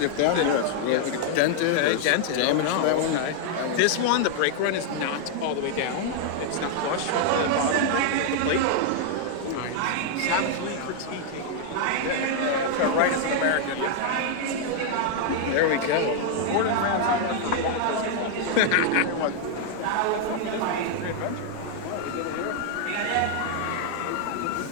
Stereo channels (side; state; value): both; different; correlation 0.00